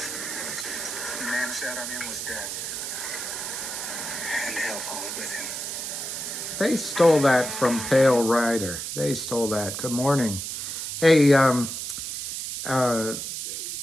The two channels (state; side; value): noise; right; hiss, 5 dB below the sound